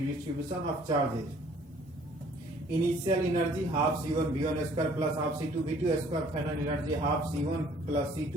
of charges. Initial energy half C1 V1 square plus half C2 V2 square, final energy half C1 plus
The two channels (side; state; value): both; normal; correlation 0.57